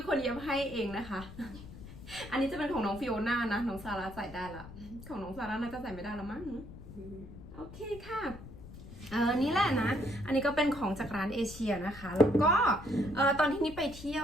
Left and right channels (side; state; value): left; noise; rumble, 15 dB below the sound